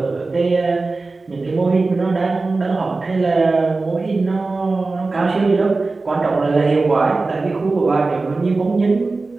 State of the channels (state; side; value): quieter; left; 3.6 dB